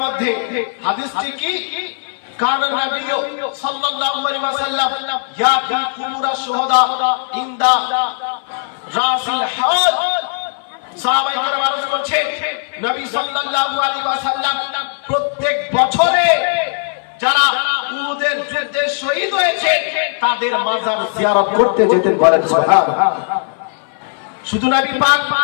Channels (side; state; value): right; silent; 60 dB below the other